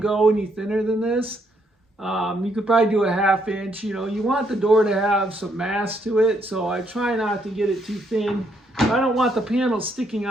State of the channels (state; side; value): normal; both; correlation 0.73